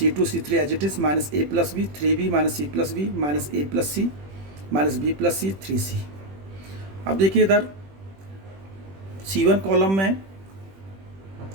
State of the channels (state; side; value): late; left; 21 ms